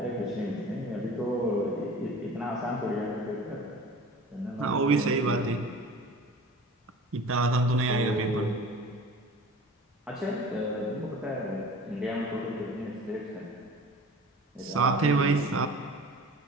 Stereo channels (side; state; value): both; normal; correlation 0.41